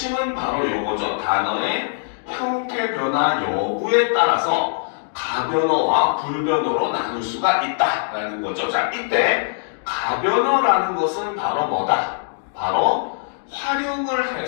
바로 요거죠. 단어의 형태 변화 여부에 따라서 가변어와 불변어로 나눌 수가 있다라는 거죠. 자, 이때 가변어라는 것은 바로 뭐다? 바로 활용을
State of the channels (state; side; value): silent; right; digital silence